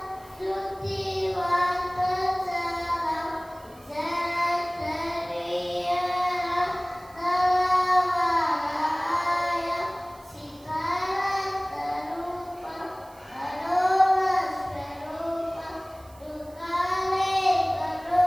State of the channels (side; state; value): right; noise; hiss, 26 dB below the sound